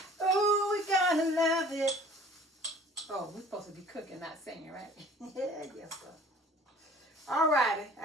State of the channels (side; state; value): both; normal; correlation 0.49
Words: Ooh, we're gonna love it. Oh, we're supposed to be cooking, not singing, right? Yeah, yes, sir. All righty,